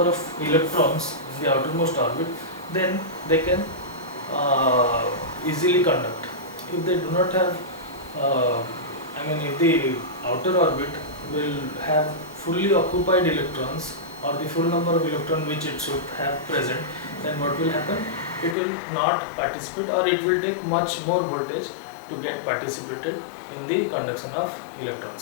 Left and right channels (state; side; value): drops out; right; at 18.6 s